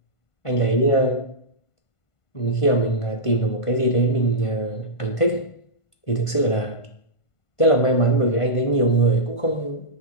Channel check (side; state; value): right; late; 1.5 ms